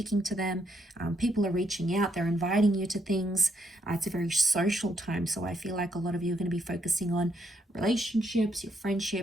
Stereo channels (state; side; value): normal; both; correlation 0.75